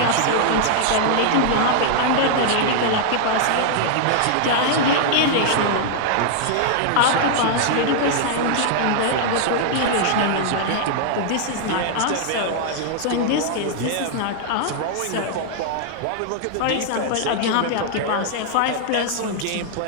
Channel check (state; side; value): different; both; correlation -0.01